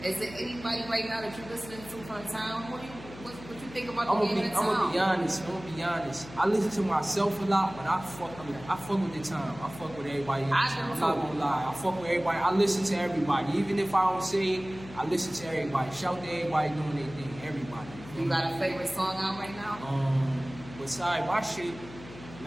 Is there anybody right now that you're listening to from the town? What you think about the game in the town? I'm gonna be honest. I listen to myself a lot, but I fuck with the town. I fuck with everybody in the town. I'm not gonna lie. I fuck with everybody. I listen to everybody. Even if I don't say it, I listen to everybody. Shout to everybody doing their thing. Everybody. You got a favorite song out right now? Besides my shit,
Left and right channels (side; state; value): left; noise; hum, 16 dB below the sound